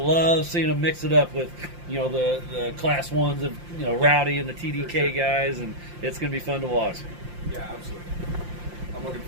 seeing them mix it up with, the Class 1s of, Rowdy and the TDK guys, and it's going to be fun to watch. Yeah, absolutely. I'm looking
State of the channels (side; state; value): left; late; 5.7 ms